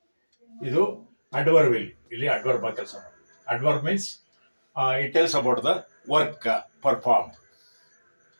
ಇದು ಅಡ್ವರ್ಬ್. ಇಲ್ಲಿ ಅಡ್ವರ್ಬ್ ಆಗಿ ಕೆಲಸ ಮಾಡಿ. Adverb means it tells about the work perform.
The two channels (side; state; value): both; inverted; correlation -1.00